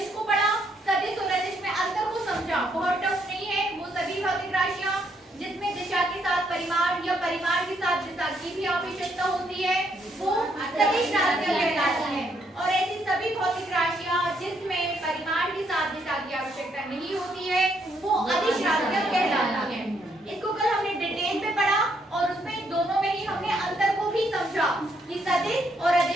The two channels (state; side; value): normal; both; correlation 0.73